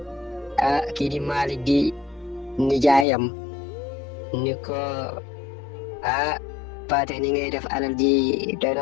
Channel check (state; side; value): drops out; right; at 3.1 s